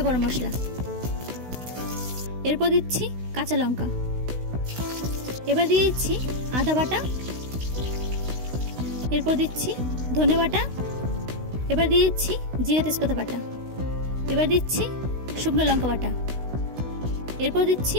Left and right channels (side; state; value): left; late; 16 ms